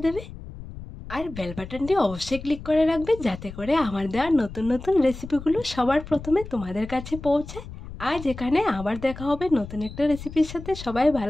দেবে। আর বেল বাটনটি অবশ্যই ক্লিক করে রাখবে, যাতে করে আমার দেওয়া নতুন নতুন রেসিপিগুলো সবার প্রথমে তোমাদের কাছে পৌঁছায়। আজ এখানে আবার দেখা হবে নতুন একটা রেসিপির সাথে। সবাই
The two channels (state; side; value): noise; left; rumble, 13 dB below the sound